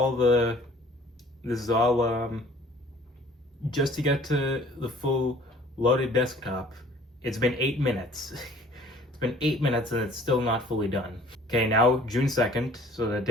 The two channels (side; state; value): both; normal; correlation 0.52